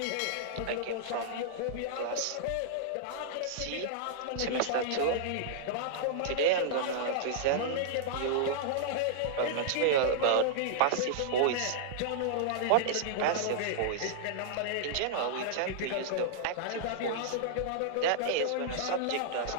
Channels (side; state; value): both; different; correlation -0.01